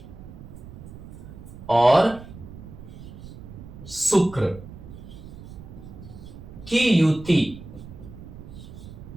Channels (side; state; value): right; noise; rumble, 14 dB below the sound